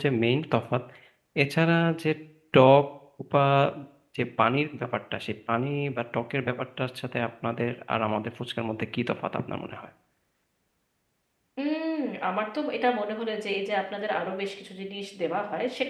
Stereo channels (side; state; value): both; identical; correlation 1.00